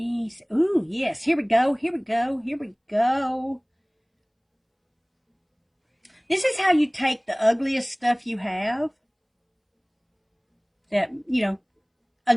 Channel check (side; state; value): both; identical; correlation 1.00